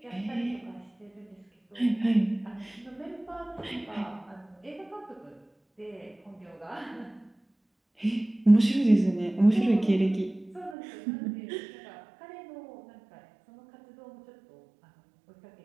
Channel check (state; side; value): drops out; left; at 10.8 s